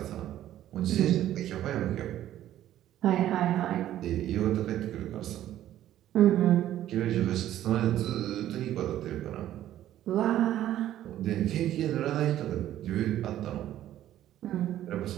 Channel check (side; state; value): left; quieter; 12.6 dB